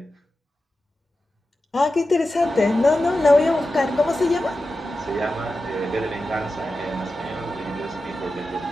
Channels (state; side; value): normal; both; correlation 0.92